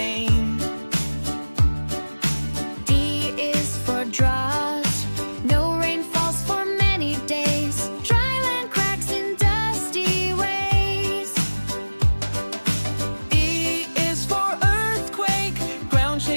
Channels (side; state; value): both; inverted; correlation -1.00